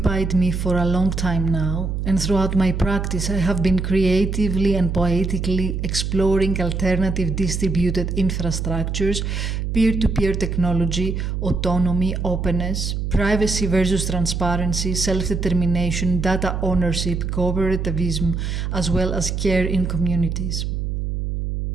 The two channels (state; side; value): noise; right; hum, 2 dB below the sound